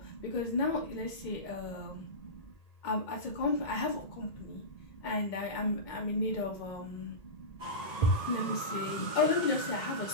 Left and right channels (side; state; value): right; late; 2.2 ms